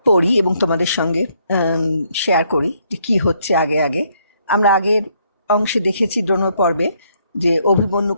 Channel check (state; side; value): inverted; both; correlation -0.71